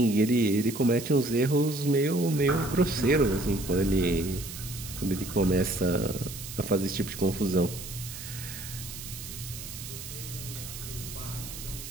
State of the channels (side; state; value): right; noise; hiss, 11 dB below the sound